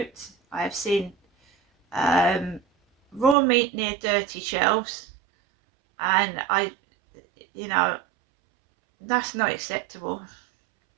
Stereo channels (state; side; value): drops out; left; at 3.4 s